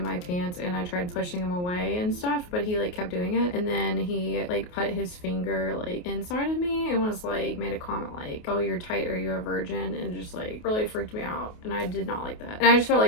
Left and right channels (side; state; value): right; late; 28 ms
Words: my pants, and I tried pushing him away and stuff, but he like kept doing it. And then he like put his finger like inside of me and was like, made a comment like, oh, you're tight, are you a virgin? And just like really freaked me out, and I did not like that. And I just felt